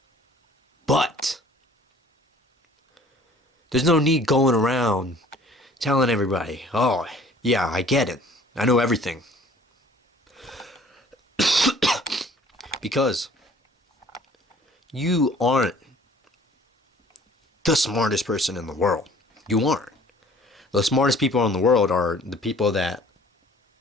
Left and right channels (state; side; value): normal; both; correlation 0.52